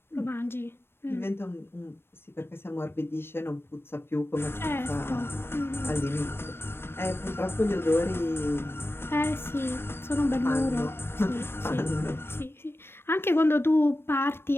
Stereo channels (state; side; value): late; right; 0.11 ms